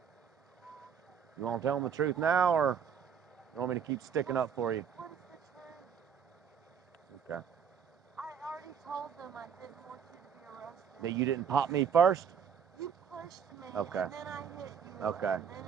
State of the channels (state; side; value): quieter; left; 7.3 dB